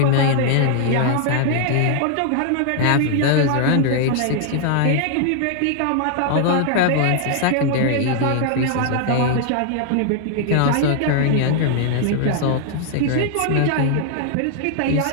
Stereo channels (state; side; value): different; both; correlation 0.00